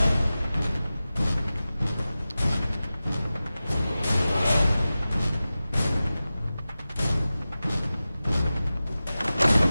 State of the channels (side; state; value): both; inverted; correlation -0.95